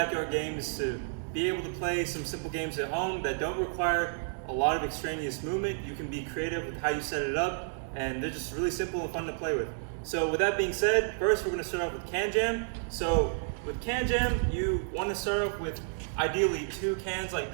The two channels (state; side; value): silent; left; 57 dB below the other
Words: games is to be able to play some simple games at home that don't require a lot of extraneous movement. You can be creative with how you set it up, and they're just really simple and fun to play with. So with that being said, first we're going to start off with Can Jam. So with Can Jam, you want to start off with ideally 2 cans like